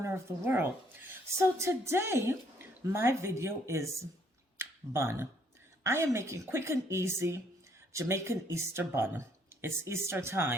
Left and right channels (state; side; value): normal; both; correlation 0.66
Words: of the world. So today, my video is bun. I am making quick and easy Jamaican Easter bun. It's Easter